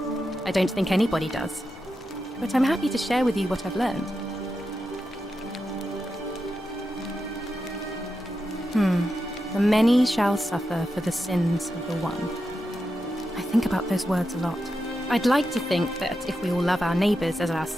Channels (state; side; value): normal; both; correlation 0.88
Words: I don't think anybody does. But I'm happy to share with you what I've learned. The many shall suffer for the sins of the one. I think about those words a lot. I'd like to think that if we all love our neighbours as